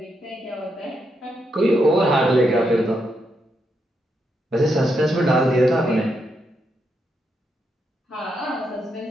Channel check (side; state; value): both; normal; correlation 0.81